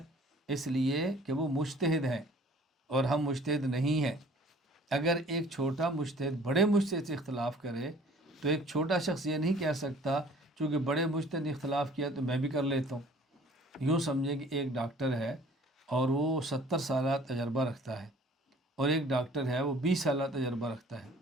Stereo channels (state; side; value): normal; both; correlation 0.52